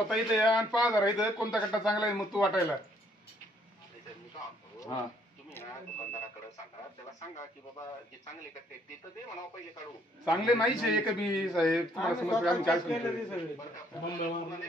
इथे या आणि 5,000 इथं कोणता कट्टा चांगला आहे मग तू वाटायला. हा दुकानदाराकडे सांगा, त्याला सांगा की बाबा जे चांगले कट्टे ते तर दे म्हणा, पहिले काढू. चांगले नाहीच आहे एक बी साहेब. तुम्हाला समजतं आम्ही काय सांगतो?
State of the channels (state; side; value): normal; both; correlation 0.66